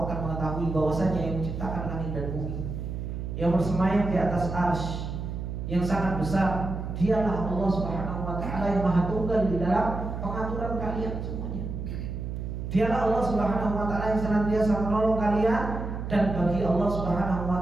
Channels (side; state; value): right; noise; hum, 5 dB below the sound